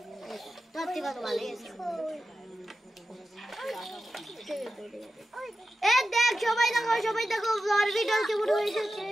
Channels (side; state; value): both; normal; correlation 0.92